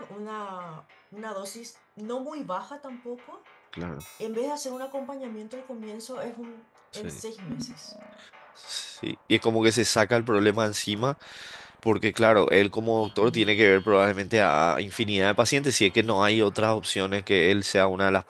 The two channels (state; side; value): identical; both; correlation 1.00